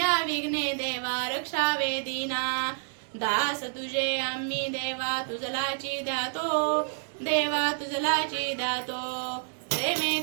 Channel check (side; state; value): left; silent; 59 dB below the other